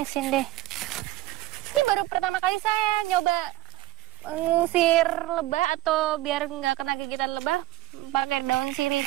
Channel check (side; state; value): left; quieter; 17.1 dB